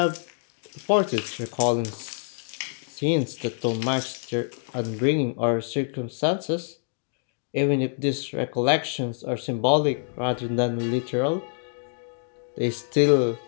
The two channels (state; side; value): silent; right; digital silence